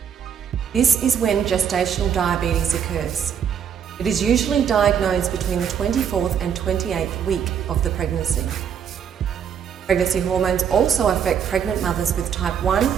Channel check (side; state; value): left; quieter; 8.0 dB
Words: This is when gestational diabetes occurs. It is usually diagnosed between the 24th and 28th week of the pregnancy. Pregnancy hormones also affect pregnant mothers with type 1